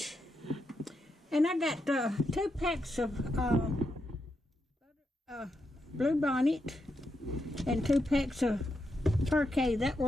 and I got 2 packs of Blue Bonnet and 2 packs of Parquet. That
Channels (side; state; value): both; normal; correlation 0.83